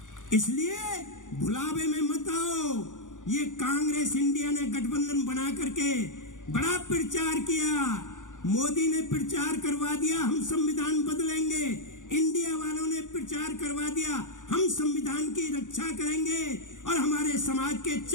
इसलिए भुलावे में मत आओ। ये कांग्रेस इंडिया ने गठबंधन बना करके बड़ा प्रचार किया, मोदी ने प्रचार करवा दिया हम संविधान बदलेंगे, इंडिया वालों ने प्रचार करवा दिया हम संविधान की रक्षा करेंगे, और हमारे समाज के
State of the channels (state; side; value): late; right; 0.87 ms